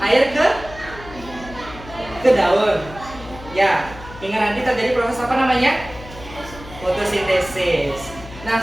air ke daun. Ya, hingga nanti terjadi proses apa namanya? Fotosintesis. Nah,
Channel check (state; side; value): noise; left; hum, 16 dB below the sound